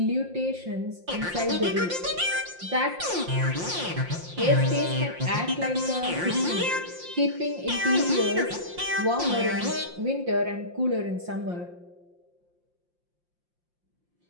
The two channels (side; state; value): left; late; 5.7 ms